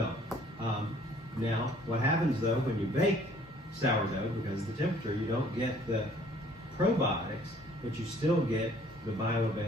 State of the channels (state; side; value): normal; both; correlation 0.58